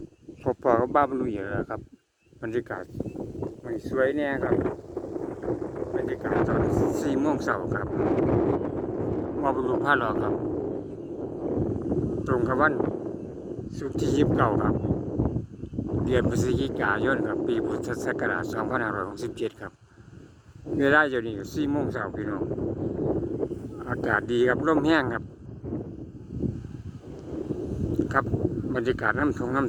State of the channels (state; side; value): identical; both; correlation 1.00